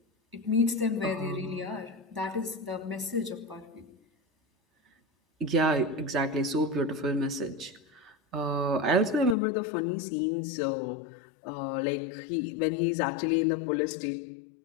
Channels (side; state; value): right; drops out; at 9.3 s